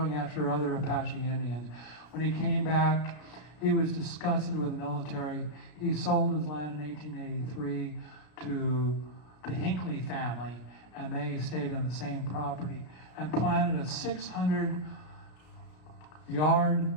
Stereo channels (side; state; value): right; late; 33 ms